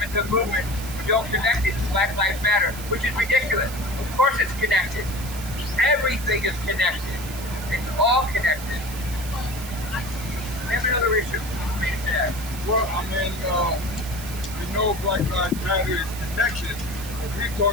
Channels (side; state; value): right; noise; hiss, 12 dB below the sound